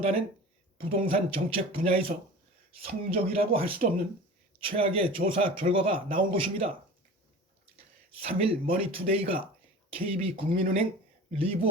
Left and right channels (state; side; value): normal; both; correlation 0.37